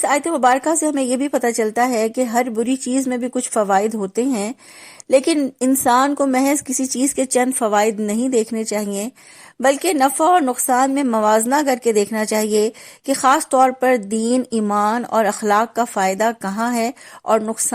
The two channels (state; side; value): identical; both; correlation 1.00